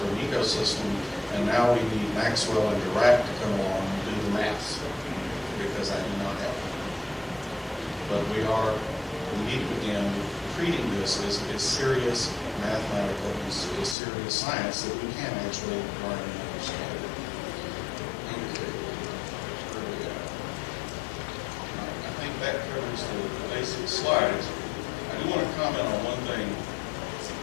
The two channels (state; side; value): drops out; right; at 14.0 s